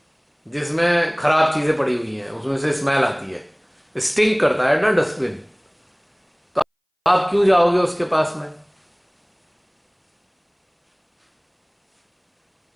जिसमें खराब चीजें पड़ी हुई हैं उसमें से स्मेल आती है, स्टिंक करता है ना डस्टबिन। तो आप क्यों जाओगे उसके पास में?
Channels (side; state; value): both; identical; correlation 1.00